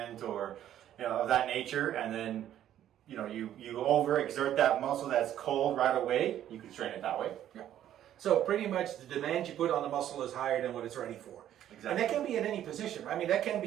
or of that nature, and then you overexert that muscle that's cold right away, you can strain it that way. Yeah. So pretty much the demand you put on the muscle is higher than what it's ready for. Exactly. And that can be in any position. I mean, that can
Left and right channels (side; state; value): left; quieter; 11.4 dB